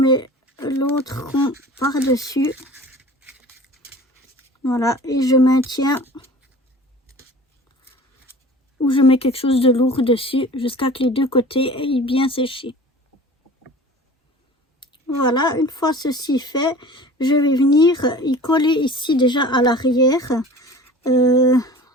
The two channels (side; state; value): both; normal; correlation 0.42